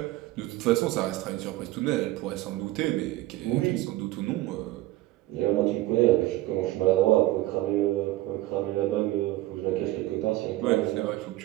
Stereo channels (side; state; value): left; quieter; 17.1 dB